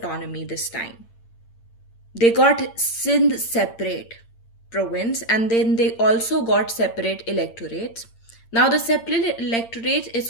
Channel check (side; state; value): right; late; 8.8 ms